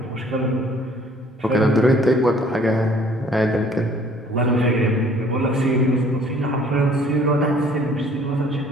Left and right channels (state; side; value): normal; both; correlation 0.56